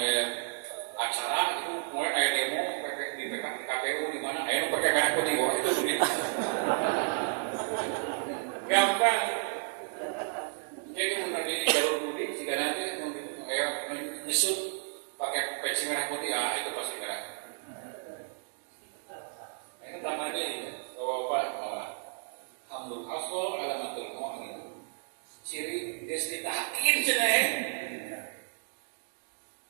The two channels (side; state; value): left; silent; digital silence